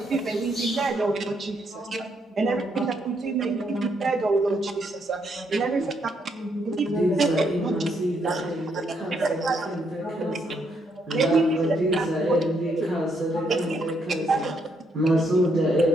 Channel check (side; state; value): both; normal; correlation 0.75